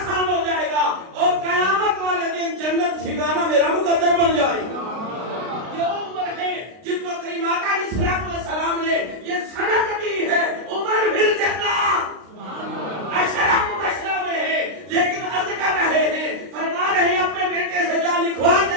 ہو جائے گا اور قیامت والے دن جنت ٹھکانہ میرا مقدر بن جائے گا۔ یہ عمر ہے جن کو کریم آقا علیہ الصلوۃ والسلام نے یہ سند دی ہے، عمر بن جنت اشرا مبشرہ میں ہے، لیکن عرض کر رہے ہیں، فرما رہے ہیں اپنے بیٹے سے جا لکھوا کے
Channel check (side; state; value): left; late; 33 ms